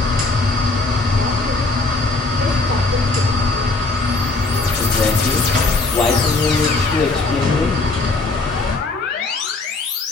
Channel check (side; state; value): right; quieter; 3.3 dB